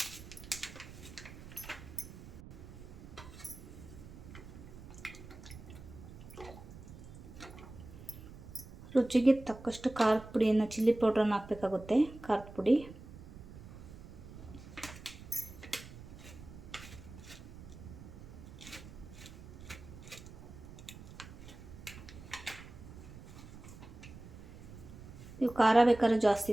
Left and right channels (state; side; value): noise; right; rumble, 15 dB below the sound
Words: ರುಚಿಗೆ ತಕ್ಕಷ್ಟು ಖಾರದ ಪುಡಿಯನ್ನು, ಚಿಲ್ಲಿ ಪೌಡ್ರನ್ನು ಹಾಕಬೇಕಾಗುತ್ತೆ. ಖಾರದ ಪುಡಿ ಇವು ಖಾರ ಬೇಕಾದ್ರೆ ಜಾಸ್ತಿ